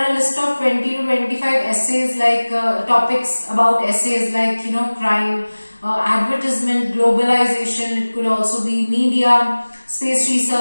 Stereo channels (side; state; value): both; inverted; correlation -1.00